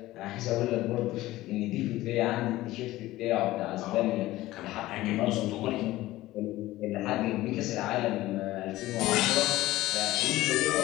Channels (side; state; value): right; quieter; 16.9 dB